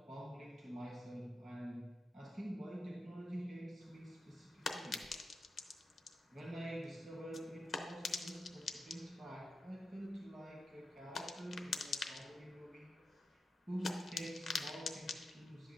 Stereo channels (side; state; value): both; normal; correlation 0.90